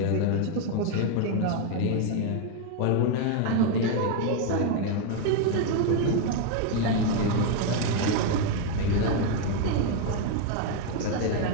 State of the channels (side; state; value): both; different; correlation 0.01